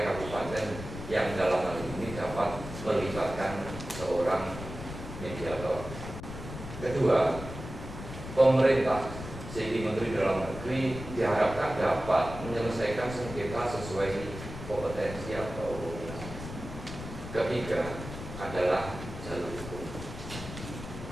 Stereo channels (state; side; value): noise; left; rumble, 10 dB below the sound